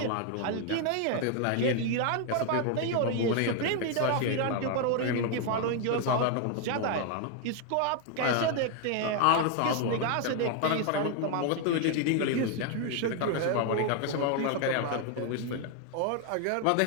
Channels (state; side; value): different; both; correlation 0.01